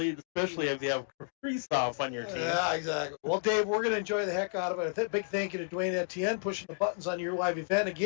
especially if you have Kristoff on your team. Yeah, exactly. Well, Dave, we're going to enjoy the heck out of it. A big thank you to Dwayne Etienne pushing the buttons on Your Live Event.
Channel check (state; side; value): silent; right; digital silence